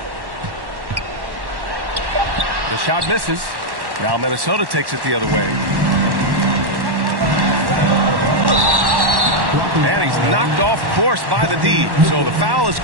The shot misses. Now Minnesota takes it the other way. And he's knocked off course by the D. So the foul is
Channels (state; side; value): late; left; 1.1 ms